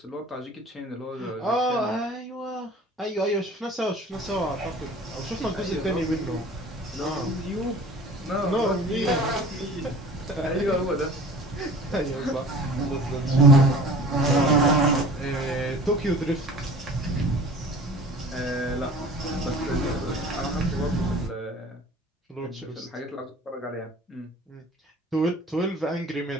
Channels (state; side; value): normal; both; correlation 0.44